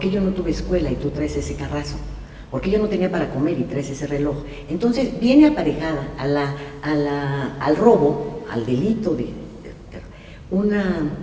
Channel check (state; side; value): identical; both; correlation 1.00